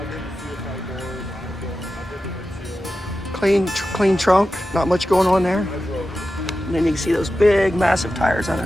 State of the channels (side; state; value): both; normal; correlation 0.92